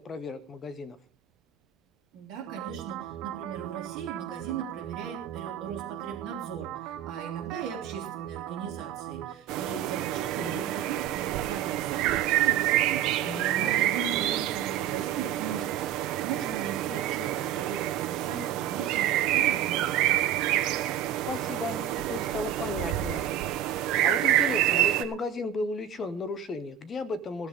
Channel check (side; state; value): left; quieter; 9.7 dB